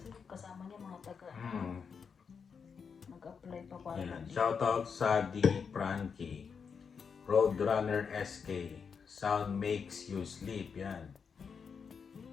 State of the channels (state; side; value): quieter; right; 6.1 dB